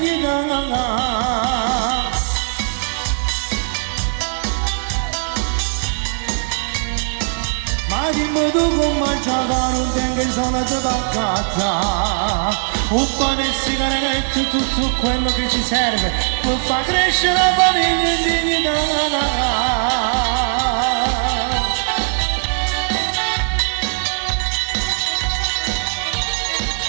Ma dimmi tu come già fa, non tengo i soldi per casa. Un po' di sigarette, tutto quello che ci serve per far crescere la famiglia in dignità.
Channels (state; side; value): silent; left; 66 dB below the other